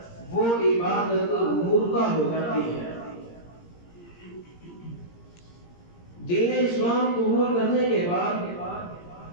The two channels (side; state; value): right; late; 17 ms